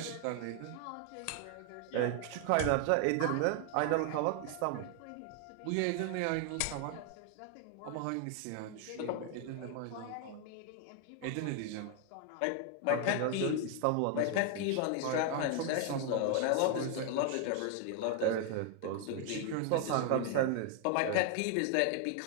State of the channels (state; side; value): different; both; correlation 0.00